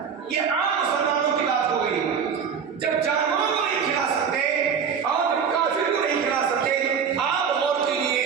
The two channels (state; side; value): quieter; left; 6.8 dB